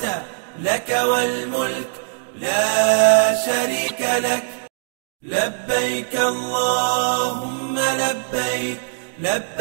لك والملك لا شريك لك. لبيك اللهم لبيك،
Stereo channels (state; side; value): silent; left; digital silence